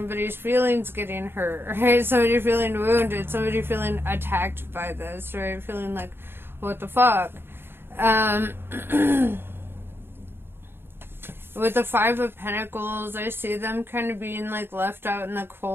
feelings getting hurt, right? Somebody feeling wounded, somebody feeling attacked by this, right? Feeling like, what the fuck? With the Five of Pentacles, I see them kind of being, like, left out in the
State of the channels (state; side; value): late; left; 0.11 ms